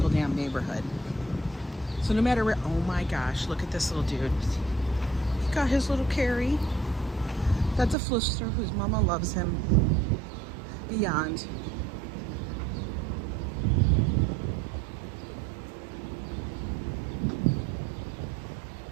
damn neighborhood. So no matter where, oh my gosh, look at this little dude. He got his little Carrie. That's a Flister whose mama loves him beyond.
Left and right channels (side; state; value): left; drops out; at 8.0 s